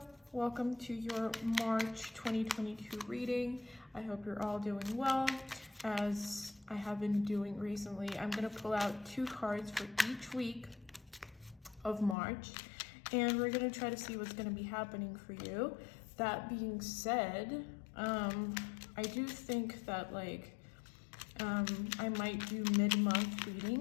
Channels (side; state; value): right; drops out; at 12.2 s